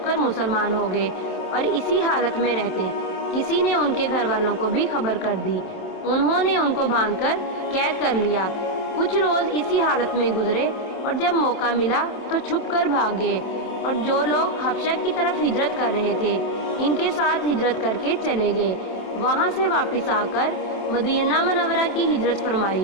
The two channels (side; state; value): right; late; 27 ms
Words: کر مسلمان ہو گئے اور اسی حالت میں رہتے۔ کسی نے ان کے گھر والوں کو بھی خبر کر دی۔ انہوں نے ان کو باندھ کر قید کر لیا۔ کچھ روز اسی حالت میں گزرے اور جب موقع ملا تو چھپ کر بھاگ گئے، اور جو لوگ حبشہ کی طرف ہجرت کر رہے تھے ان کے ساتھ ہجرت کر کے چلے گئے۔ وہاں سے واپس آ کر مدینہ منورہ کی ہجرت